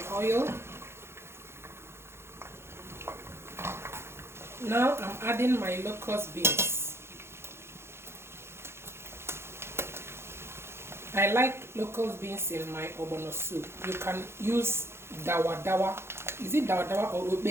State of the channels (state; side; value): late; left; 0.12 ms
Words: oil. Now I'm adding my locust beans. I like locust beans in my ogbono soup. You can use dawa dawa. Is it dawa dawa or